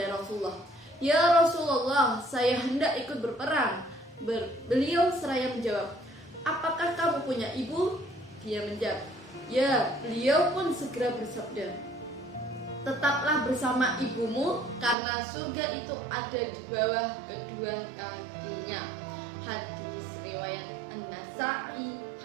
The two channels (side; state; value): left; drops out; at 15.0 s